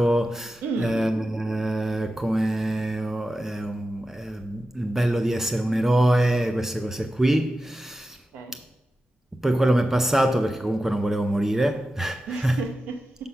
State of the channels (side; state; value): both; normal; correlation 0.92